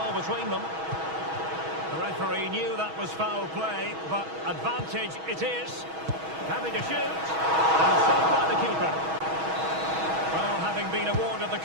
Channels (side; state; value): left; late; 6.2 ms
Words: between them. The referee knew that was foul play, but advantage it is. Happy to shoot, and saved by the keeper. Well, having been awarded the